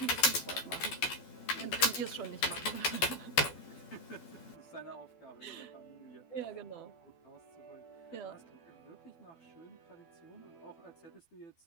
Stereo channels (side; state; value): right; late; 12 ms